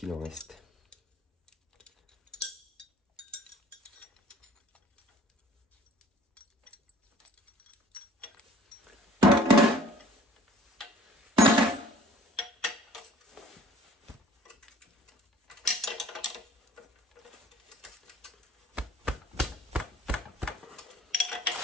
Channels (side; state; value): both; normal; correlation 0.52